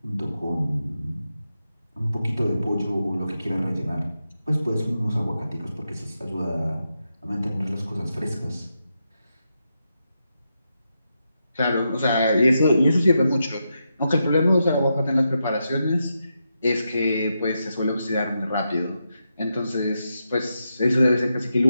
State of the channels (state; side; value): inverted; both; correlation -0.85